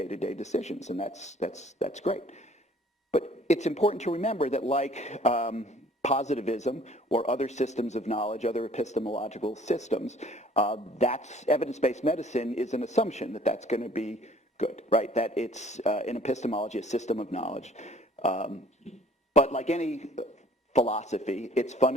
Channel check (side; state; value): both; normal; correlation 0.55